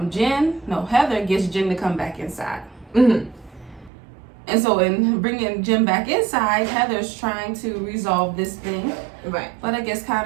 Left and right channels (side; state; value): left; drops out; at 3.9 s